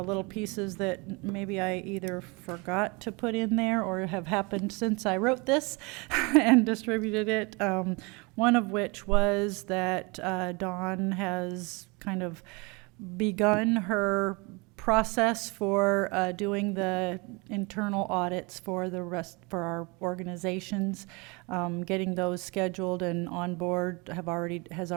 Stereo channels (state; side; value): quieter; left; 28.0 dB